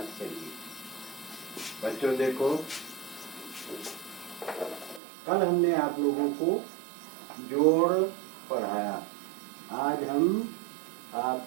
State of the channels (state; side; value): drops out; left; at 5.0 s